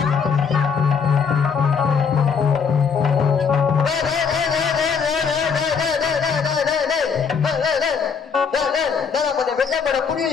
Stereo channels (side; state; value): right; quieter; 6.1 dB